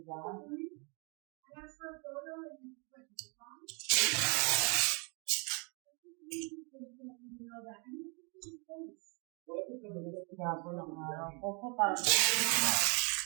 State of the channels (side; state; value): left; quieter; 33.5 dB